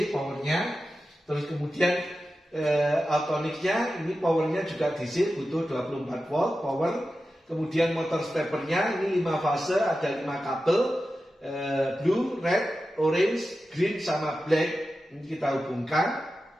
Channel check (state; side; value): normal; both; correlation 0.92